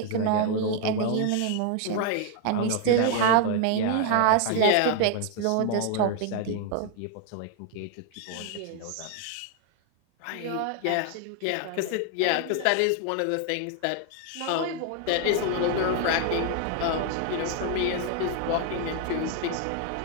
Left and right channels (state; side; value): different; both; correlation 0.01